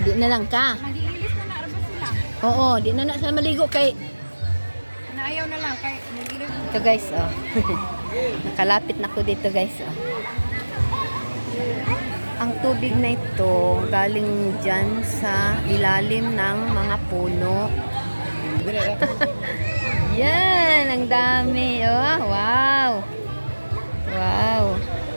na lang ka. Mag-iilis na narabas sila. Oo, di na na siya maligo kay Naayaw na lang kay mag-iilis. ito guys, oh. Nakalapit na ko dito guys, oh. Ang tubig na ito galing dyan sa ilalim ng mga puno. Yan, ang dami. Oh, wow. Wow.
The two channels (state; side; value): inverted; both; correlation -1.00